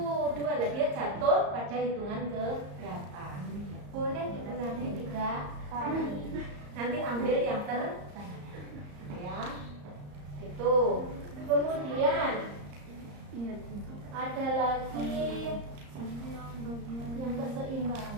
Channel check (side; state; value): left; late; 34 ms